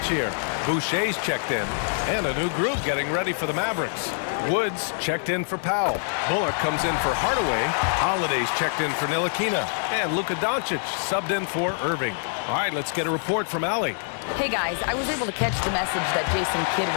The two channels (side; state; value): right; silent; digital silence